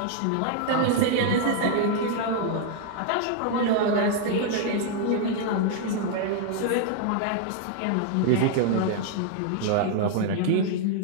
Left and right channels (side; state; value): both; different; correlation 0.00